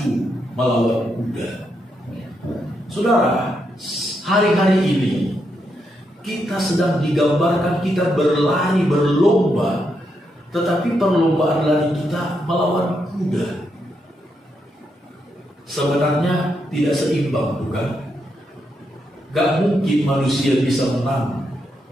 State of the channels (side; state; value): both; normal; correlation 0.81